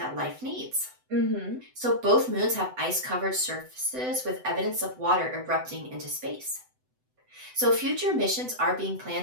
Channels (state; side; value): late; left; 7.9 ms